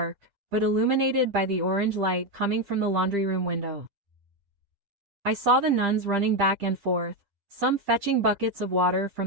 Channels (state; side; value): late; left; 7.9 ms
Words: but illuminated by the orange light coming from the laundry room window. I saw the nuns running back and forth, some fetching buckets of water from